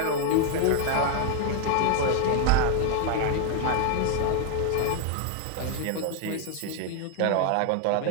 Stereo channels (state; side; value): different; both; correlation 0.01